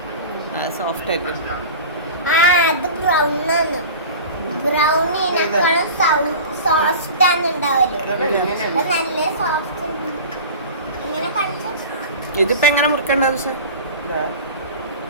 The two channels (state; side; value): inverted; both; correlation -0.35